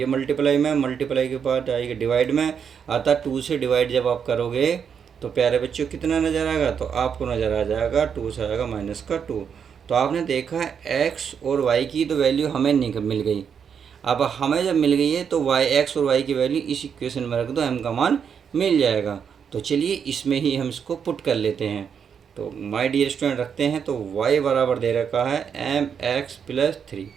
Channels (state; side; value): quieter; left; 7.2 dB